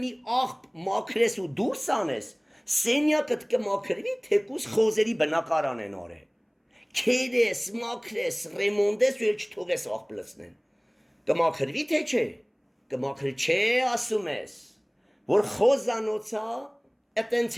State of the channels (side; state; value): both; identical; correlation 1.00